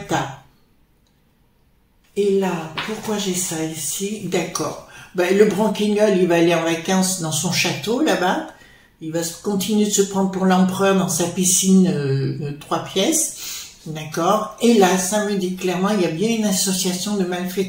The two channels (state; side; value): identical; both; correlation 1.00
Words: Et là, pourquoi j'ai ça ici? D'accord. Ben, le branquignol, il va aller en vacances dans son château, là-bas. Il va continuer de se prendre pour l'empereur dans sa piscine 3 pièces. D'accord. Et là, ça me dit clairement, il y a bien une association de